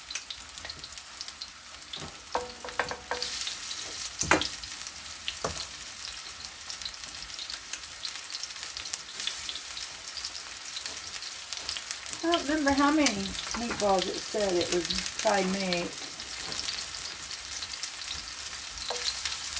I don't remember how many meatballs it said it would probably make.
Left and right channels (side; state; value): both; identical; correlation 1.00